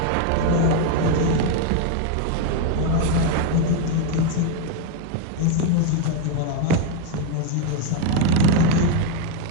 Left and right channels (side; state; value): both; different; correlation 0.01